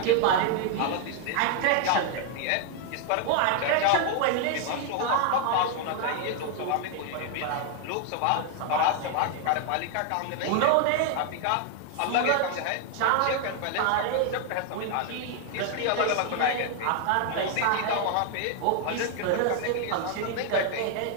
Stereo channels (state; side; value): different; both; correlation 0.00